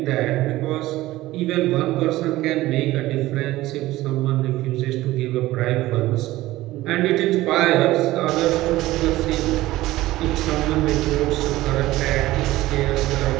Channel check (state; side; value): quieter; left; 17.0 dB